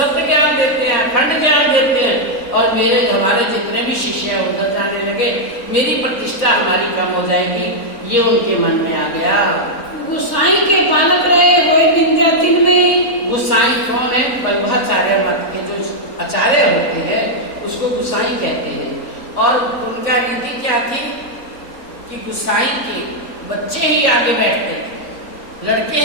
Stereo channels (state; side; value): late; right; 3.5 ms